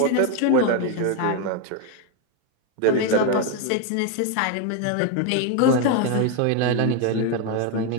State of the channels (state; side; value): different; both; correlation 0.01